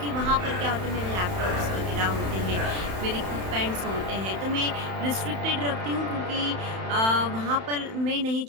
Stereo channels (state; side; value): late; left; 31 ms